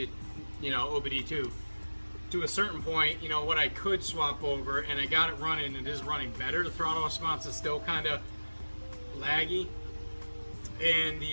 OBD2 to a certain point, what I could swap over, and I got it running. It is running better. The throttle response is still kind of laggy, and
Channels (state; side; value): inverted; both; correlation -1.00